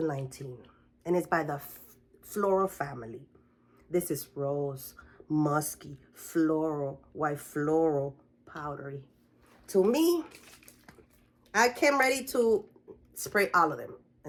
and it's by the Floral family. This is rose, musky, floral, white floral, powdery. To me, I came ready to spray all of them.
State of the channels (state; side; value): identical; both; correlation 1.00